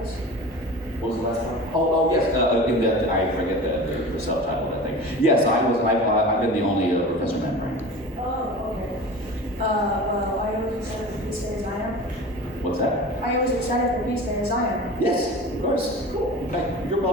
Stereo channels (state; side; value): normal; both; correlation 0.35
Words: What was the last one? Oh yes. In that, I forget the subtitle of that thing. Yes, I've been the only Professor Membrane. Oh, okay. Well, I only are you as excited for Beast Day as I am? Yes, of course. Cool. In fact, you're